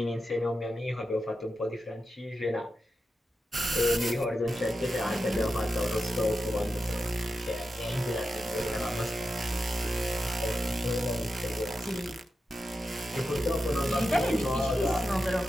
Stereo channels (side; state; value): both; normal; correlation 0.90